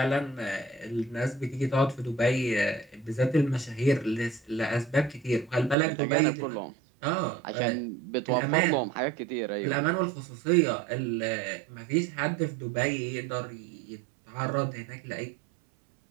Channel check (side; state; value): left; drops out; at 5.8 s